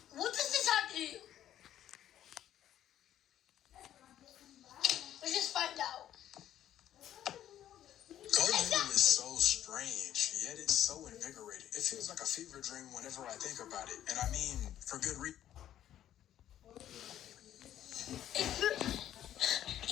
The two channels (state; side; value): quieter; right; 11.5 dB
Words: What does this have to do? Let's just find out. Go Noodle is so strange, yet it's so invigorating. It feels like a fever dream whenever I think about it, and I mean for good reason.